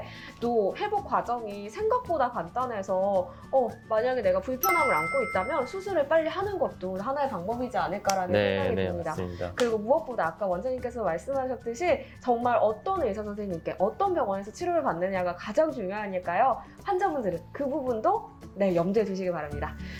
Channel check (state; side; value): identical; both; correlation 1.00